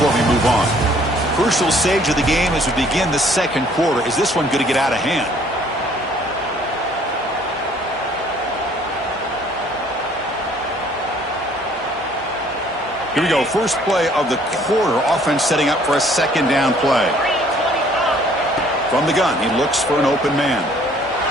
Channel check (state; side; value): normal; both; correlation 0.59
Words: we move on. Crucial stage of the game as we begin the second quarter. Is this one going to get out of hand? Here we go. First play of the quarter. Offense setting up for a second down play. From the gun, he looks for an open man.